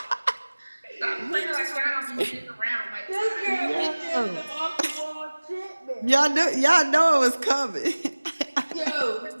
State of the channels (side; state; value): both; inverted; correlation -1.00